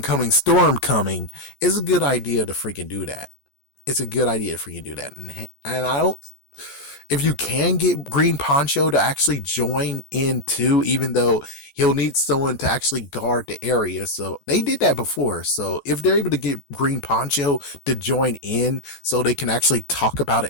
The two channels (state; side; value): late; right; 14 ms